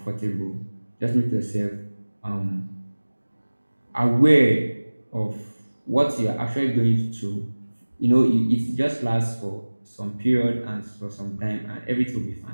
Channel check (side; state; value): both; inverted; correlation -1.00